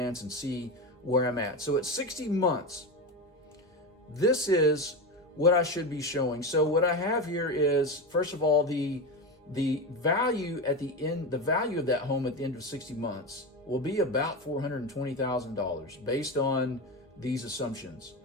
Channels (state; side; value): normal; both; correlation 0.19